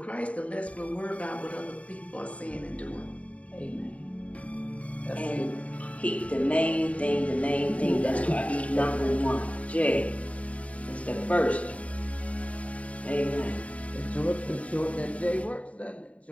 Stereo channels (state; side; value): late; right; 0.066 ms